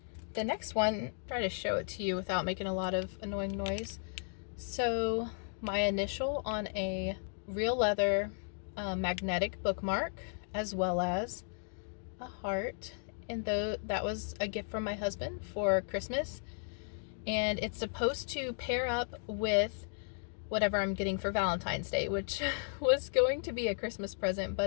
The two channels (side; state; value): right; silent; digital silence